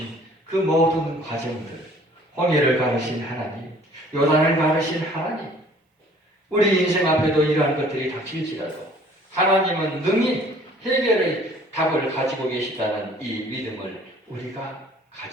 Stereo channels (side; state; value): both; normal; correlation 0.54